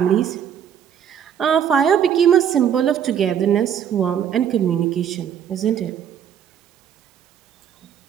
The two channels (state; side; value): quieter; left; 8.8 dB